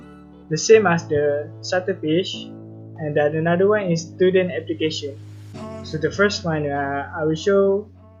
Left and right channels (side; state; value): both; identical; correlation 1.00